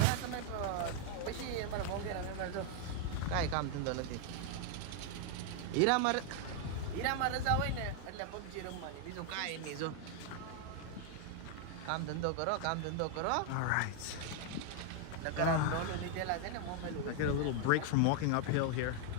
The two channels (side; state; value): both; different; correlation 0.00